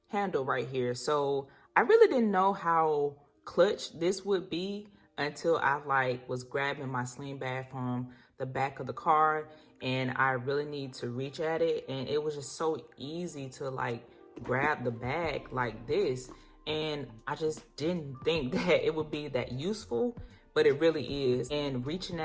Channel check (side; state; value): both; identical; correlation 1.00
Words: handle right here. So I really didn't know how clutch this would be until I was grabbing my sling bag from the back of the car and I really need to reach at it. And it was just so easy to grab the bag like this. And I just didn't think that it would be that useful, but it really is. And reaching